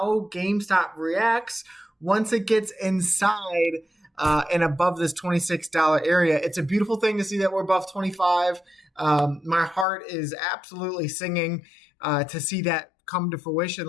GameStop reacts once it gets inside and above this $26 area. It's a beautiful thing to see that we're above 25. My heart is absolutely singing to see that come to fruition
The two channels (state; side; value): drops out; right; at 9.9 s